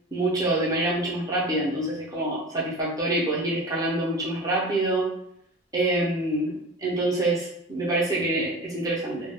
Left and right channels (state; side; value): normal; both; correlation 0.34